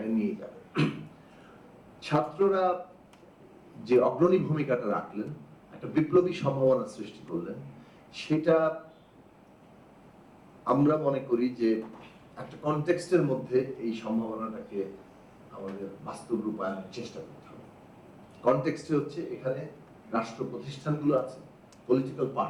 নিয়ে যাবে? ছাত্ররা যে অগ্রণী ভূমিকাটা রাখলেন, একটা বিপ্লবী সম্ভাবনা সৃষ্টি করলেন, সেটা আমরা মনে করি যে একটা কনটেক্সটের মধ্যে এই সম্ভাবনাটাকে আমাদের বাস্তব রূপায়নের চেষ্টা করতে হবে। কনটেক্সটে হচ্ছে এখানে রাষ্ট্র প্রতিষ্ঠানগুলো আছে, পলিটিক্যাল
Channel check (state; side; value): identical; both; correlation 1.00